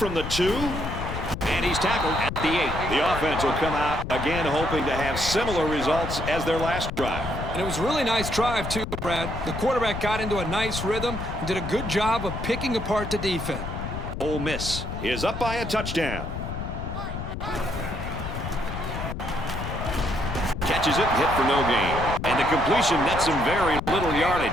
the 2. And he's tackled at the 8. The offense will come out again hoping to have similar results as their last drive. And it was a really nice drive, too, Brad. The quarterback got into a nice rhythm and did a good job of picking apart the defense. Ole Miss is up by a touchdown. Catches it, hit for no gain. And the completion nets him very little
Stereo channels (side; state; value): left; noise; rumble, 6 dB below the sound